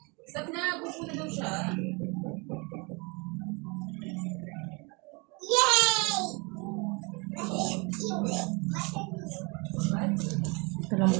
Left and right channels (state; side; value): quieter; left; 29.7 dB